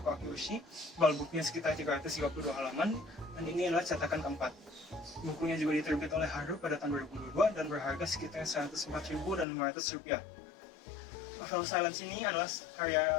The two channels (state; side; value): drops out; right; at 9.5 s